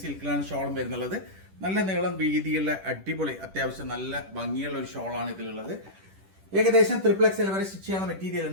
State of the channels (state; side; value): late; left; 10 ms